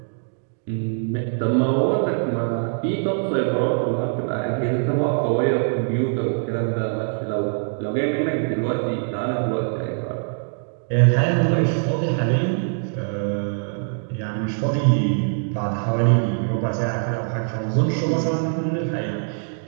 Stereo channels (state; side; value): silent; left; digital silence